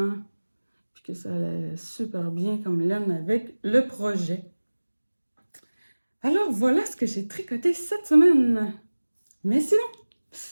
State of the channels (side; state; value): both; inverted; correlation -1.00